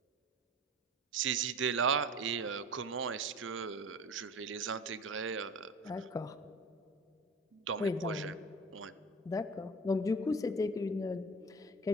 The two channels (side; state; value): both; normal; correlation 0.36